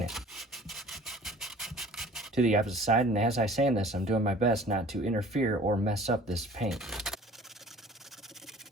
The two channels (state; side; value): normal; both; correlation 0.48